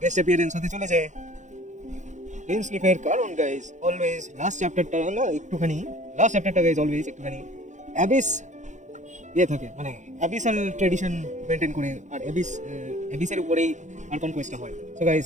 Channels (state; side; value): late; left; 0.35 ms